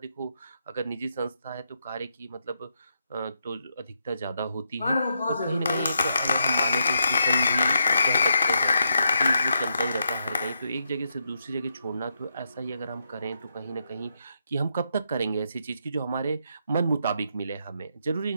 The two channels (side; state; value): both; inverted; correlation -0.81